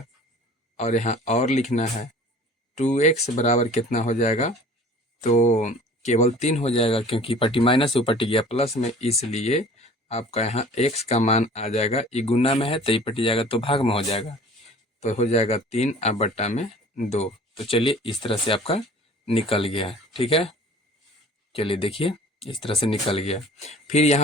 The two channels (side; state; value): both; normal; correlation 0.46